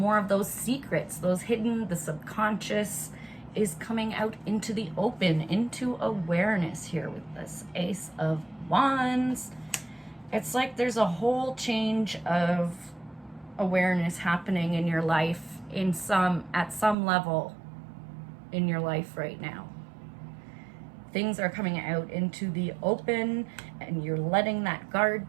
of those secrets, those hidden, the subconscious is coming out into the open, into awareness here with this Ace of Wands. It's like there's a whole change of awareness happening in your life at some level in your life right now. Things are coming out into the open and you're letting that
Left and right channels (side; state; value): left; drops out; at 16.9 s